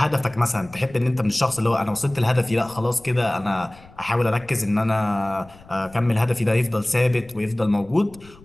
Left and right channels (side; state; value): left; noise; rumble, 23 dB below the sound